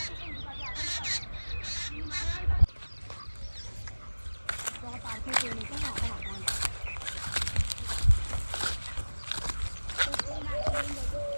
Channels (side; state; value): both; inverted; correlation -1.00